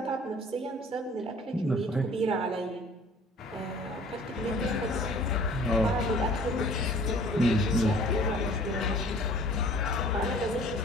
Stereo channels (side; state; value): both; normal; correlation 0.50